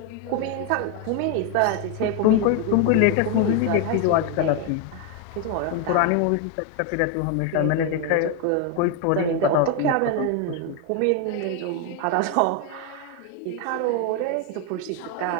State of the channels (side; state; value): both; different; correlation 0.01